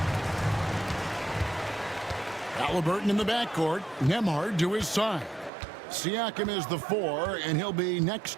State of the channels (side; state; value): left; drops out; at 5.5 s